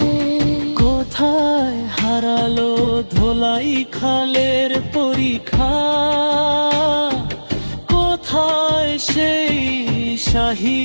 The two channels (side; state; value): both; inverted; correlation -1.00